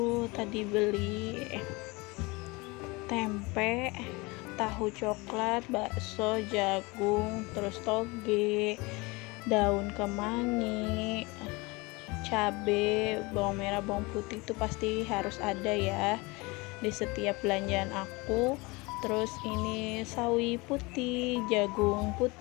tadi beli tempe, tahu coklat, bakso, jagung, terus toge, daun kemangi, cabe, bawang merah, bawang putih itu pasti harus ada ya di setiap belanjaan aku. Terus ini sawi putih, jagung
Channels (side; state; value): right; quieter; 25.0 dB